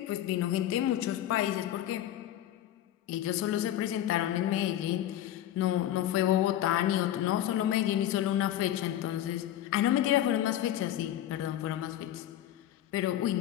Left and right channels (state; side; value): quieter; right; 12.3 dB